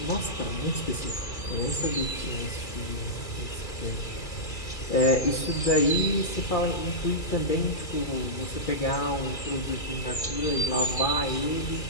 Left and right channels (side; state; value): right; late; 2.4 ms